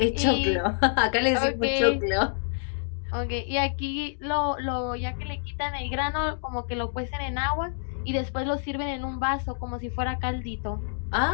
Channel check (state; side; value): silent; right; digital silence